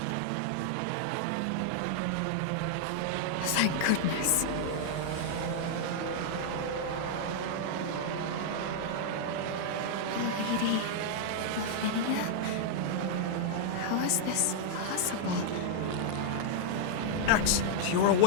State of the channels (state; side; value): different; both; correlation -0.01